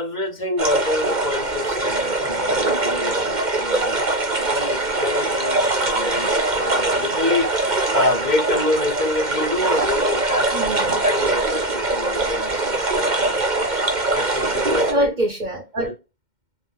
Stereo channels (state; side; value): late; left; 2.1 ms